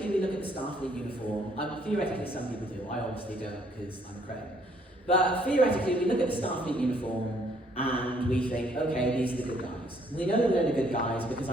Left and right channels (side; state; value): both; normal; correlation 0.65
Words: we look at the Starfleet uniform. Theoretically, some people do. I obviously don't because I'm a credit. But theoretically, we look at the Starfleet uniform and we think, okay, these are the good guys. We know that they're the good guys because